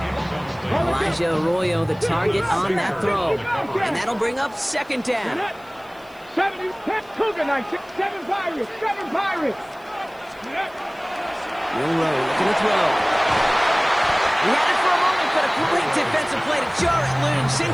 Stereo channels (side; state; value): left; noise; hiss, 29 dB below the sound